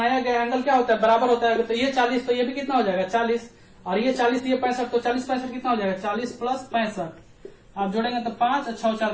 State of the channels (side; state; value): both; identical; correlation 1.00